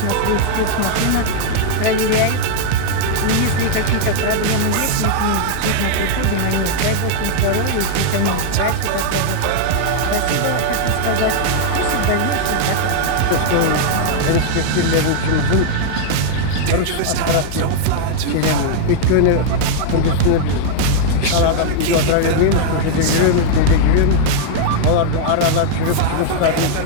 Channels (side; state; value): both; different; correlation -0.01